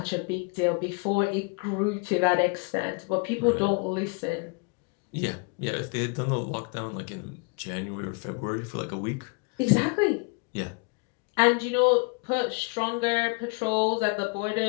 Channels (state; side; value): quieter; right; 32.3 dB